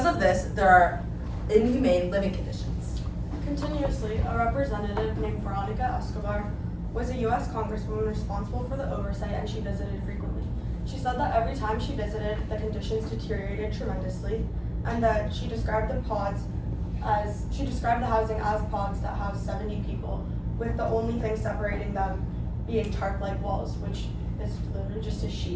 of this, there are inhumane living conditions. Continuously, a representative named Veronica Escobar was a U.S. Congresswoman responsible for the oversight, and she visited frequently. She said that every time she visited, the conditions deteriorated tremendously, and that she described the housing as pods that house 70 people, with the only thing separating them being tarp-like walls, which is literally just a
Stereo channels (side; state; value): both; identical; correlation 1.00